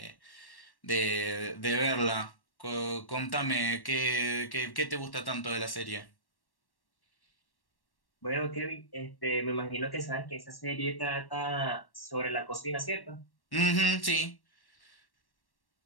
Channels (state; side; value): late; right; 1.1 ms